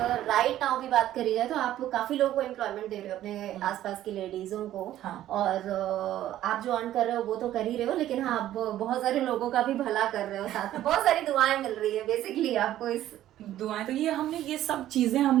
राइट नाउ भी बात करी जाए तो आप काफी लोगों को एम्प्लॉयमेंट दे रहे हो, अपने आसपास की लेडीजों को। और आप जो अर्न कर रहे हो वो तो कर ही रहे हो, लेकिन हाँ, आप बहुत सारे लोगों का भी भला कर रहे हो, साथ में बहुत सारी दुआएं मिल रही है बेसिकली आपको। इस दुआएं तो ये सब चीजें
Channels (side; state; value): left; quieter; 13.0 dB